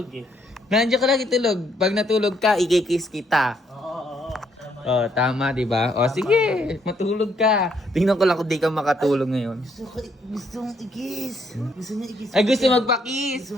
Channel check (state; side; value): normal; both; correlation 0.71